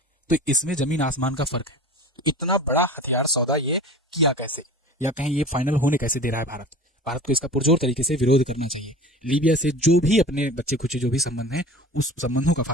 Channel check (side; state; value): both; normal; correlation 0.38